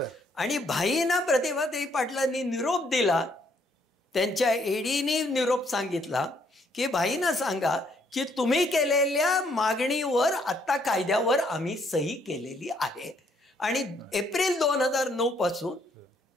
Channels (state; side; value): normal; both; correlation 0.69